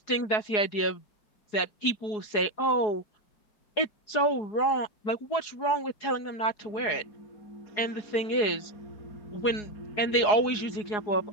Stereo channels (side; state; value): right; late; 4.8 ms